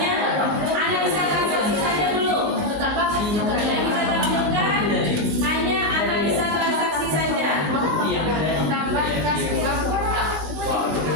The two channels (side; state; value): left; late; 19 ms